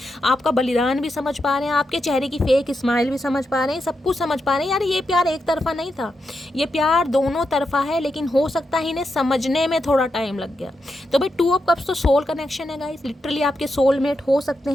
आपका बलिदान भी समझ पा रहे हैं, आपके चेहरे की फेक स्माइल भी समझ पा रहे हैं, सब कुछ समझ पा रहे हैं। यार ये प्यार एक तरफा नहीं था, ये प्यार दोनों तरफा है, लेकिन हो सकता है इन्हें समझने में थोड़ा टाइम लग गया। तो भाई 2 ऑफ कप्स तो सोल कनेक्शन है गाइस, लिटरली आपके सोलमेट हो सकते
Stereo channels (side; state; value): both; normal; correlation 0.85